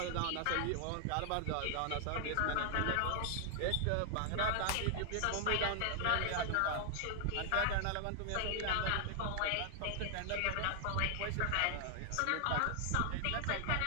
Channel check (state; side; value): different; both; correlation 0.00